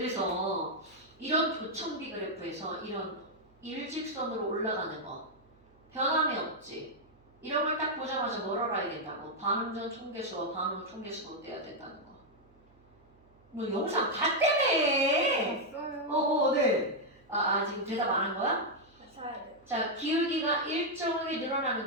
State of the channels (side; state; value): right; noise; hum, 30 dB below the sound